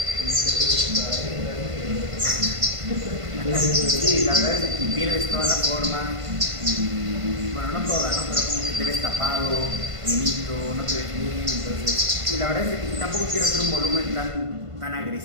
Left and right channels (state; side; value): late; left; 1.5 ms